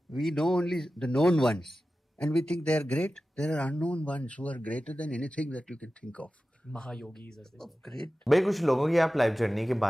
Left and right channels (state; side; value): normal; both; correlation 0.94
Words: know only the known ones. And we think they are great. There are unknown ones who are greater than anything that you can think of. Mahayogis, as they call. Great. भाई कुछ लोगों की आप life journey के